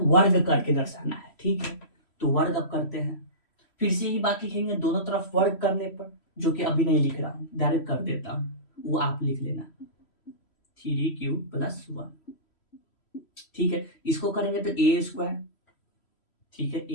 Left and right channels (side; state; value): right; late; 3.1 ms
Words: वर्ग करके दर्शाना है, ठीक है। तो वर्ग अब करते हैं, फिर से ही बात लिखेंगे दोनों तरफ वर्ग करने पर, जो कि अभी नहीं लिख रहा हूं, डायरेक्ट कर देता हूं, वो आप लिख लेना 3q + 1, ठीक है। इसको करेंगे तो a स्क्वायर, ठीक है,